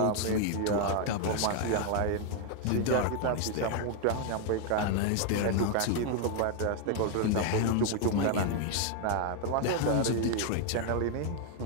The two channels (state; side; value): different; both; correlation 0.01